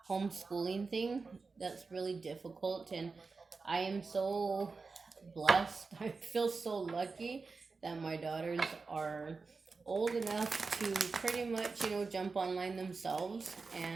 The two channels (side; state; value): left; quieter; 4.3 dB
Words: homeschooling thing, that's really difficult. And I am so blessed. I feel so lucky that my daughters are old enough to pretty much, jump online themselves.